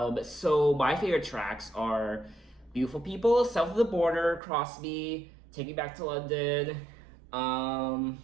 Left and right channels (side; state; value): left; drops out; at 4.4 s